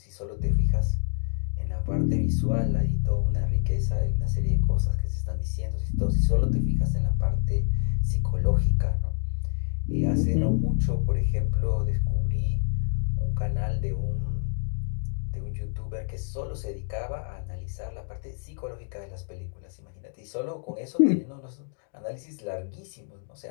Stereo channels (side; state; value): right; silent; 58 dB below the other